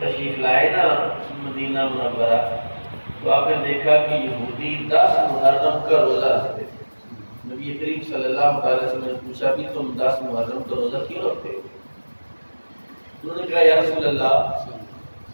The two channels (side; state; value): both; inverted; correlation -1.00